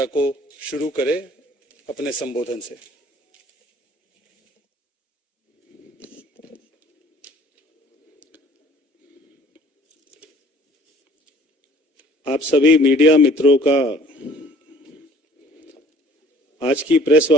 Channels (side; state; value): both; normal; correlation 0.53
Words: को शुरू करें अपने संबोधन से। आप सभी मीडिया मित्रों का आज की प्रेस